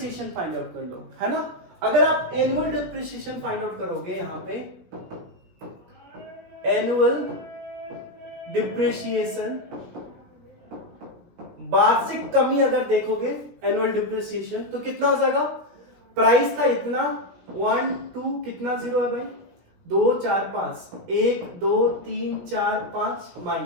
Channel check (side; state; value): left; late; 17 ms